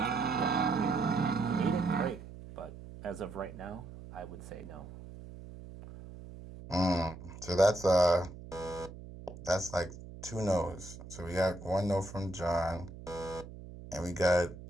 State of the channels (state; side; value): noise; right; hum, 14 dB below the sound